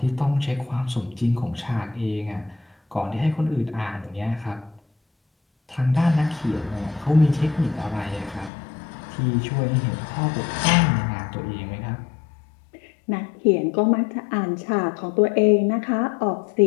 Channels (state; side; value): drops out; right; at 8.5 s